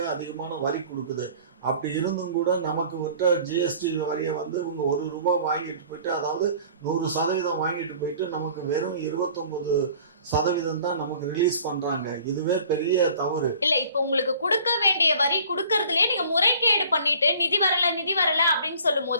அதிகமான வரி கொடுக்குது. அப்படி இருந்தும் கூட நமக்கு விட்ட ஜிஎஸ்டி வரியை வந்து இவங்க 1 ரூபாய் வாங்கிட்டு போயிட்டு, அதாவது 100% வாங்கிட்டு போயிட்டு நமக்கு வெறும் 29% தான் நமக்கு ரிலீஸ் பண்றாங்க. இதுவே பெரிய தவறு இல்ல. இப்ப உங்களுக்கு கொடுக்க வேண்டிய வரி கொடுக்கறதுலயே நீங்க முறைகேடு பண்ணிட்டு நிதி வரல அப்படின்னு சொல்லும்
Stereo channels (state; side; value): inverted; both; correlation -0.50